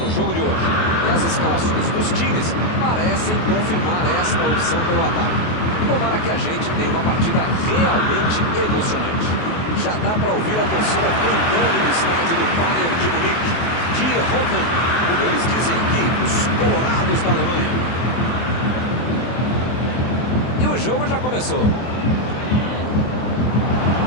o jogo de hoje. E as escalações dos times parecem confirmar esta opção pelo ataque. Tomara que a gente tenha uma partida realmente emocionante. Já dá para ouvir a torcida cantando no estádio do Bayern de Munique. Die Roten, como eles dizem aqui, os colorados da Alemanha. E o jogo já começou.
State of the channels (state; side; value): late; right; 24 ms